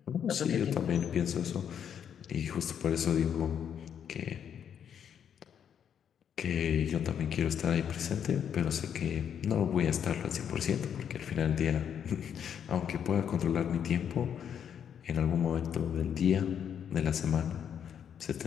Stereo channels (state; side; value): quieter; right; 8.5 dB